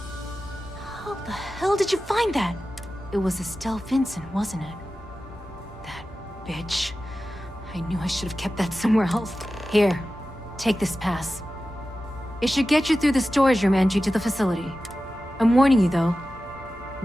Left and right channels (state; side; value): normal; both; correlation 0.94